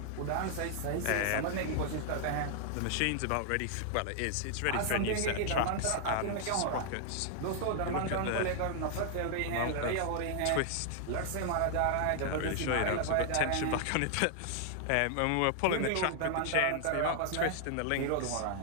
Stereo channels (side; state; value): both; different; correlation 0.00